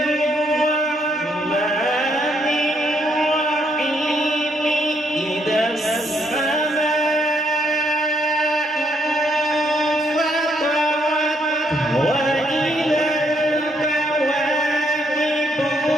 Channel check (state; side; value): normal; both; correlation 0.74